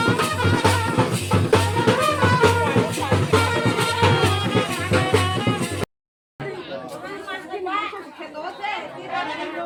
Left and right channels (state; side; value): identical; both; correlation 1.00